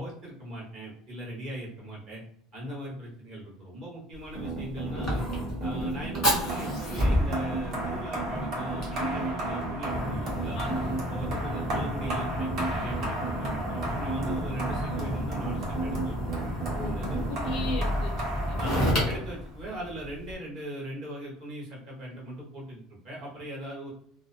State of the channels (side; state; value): both; normal; correlation 0.55